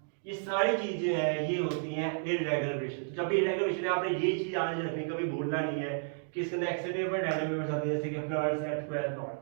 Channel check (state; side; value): silent; left; digital silence